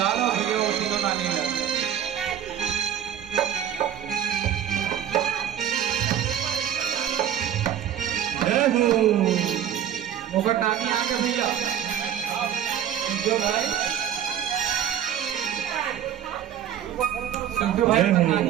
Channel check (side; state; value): left; quieter; 9.9 dB